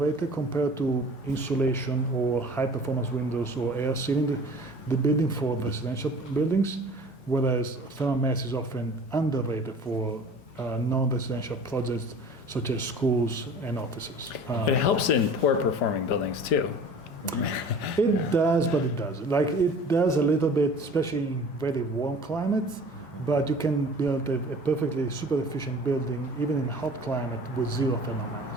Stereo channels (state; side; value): normal; both; correlation 0.44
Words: compared to insulation or high performance windows or air sealing the building for residential buildings, whereas thermal mass is often underrated for non-residential projects such as schools and offices. It helps in poor performing buildings too. It does, but it doesn't. Like it does a little bit, especially in very warm climates, but you can build a perfectly super efficient building even in hot climate with 0 thermal